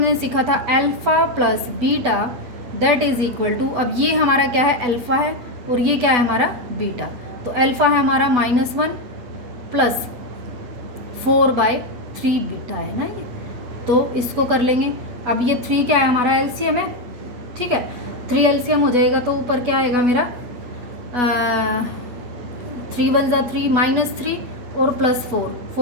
सीखा था alpha plus beta that is equal to, अब ये हमारा क्या है, अल्फ़ा है, और ये क्या है हमारा बीटा, तो अल्फ़ा है हमारा -1 प्लस 4/3 बीटा है ना ये, तो इसको कर लेंगे। अब ये 3 क्या है हमारा, एलसीएम है, ठीक है, 3 एलसीएम हो जाएगा, तो ऊपर क्या आएगा मेरा 3 1 ज़ा 3 -3 और +4,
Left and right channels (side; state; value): left; late; 8.2 ms